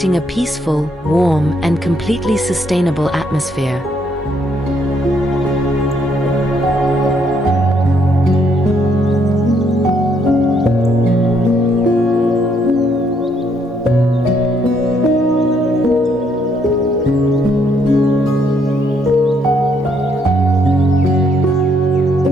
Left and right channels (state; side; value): normal; both; correlation 0.71